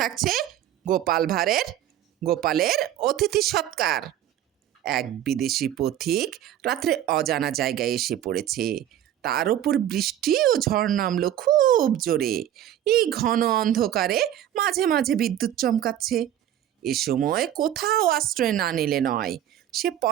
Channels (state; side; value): quieter; left; 11.5 dB